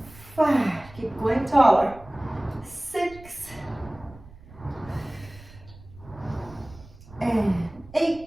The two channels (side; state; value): right; noise; rumble, 20 dB below the sound